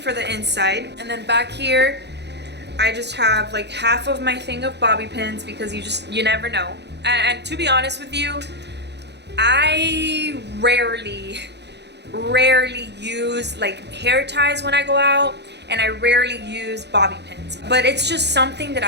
the inside. And then back here I just have like half of my thing of bobby pins, because you never know. And to be honest with you, I rarely use like hair ties when I go out, and I rarely use bobby pins, but it's just something that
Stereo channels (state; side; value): late; left; 0.50 ms